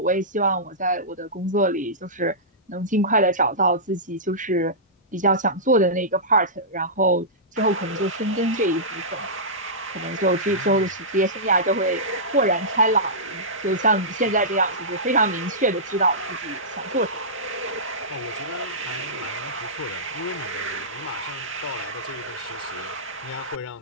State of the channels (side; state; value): both; normal; correlation -0.17